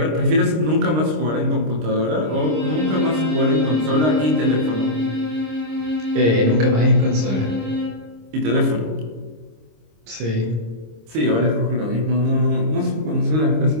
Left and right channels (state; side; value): late; left; 26 ms